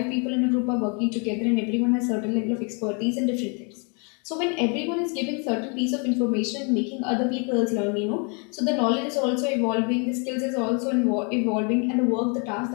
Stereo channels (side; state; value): right; quieter; 35.9 dB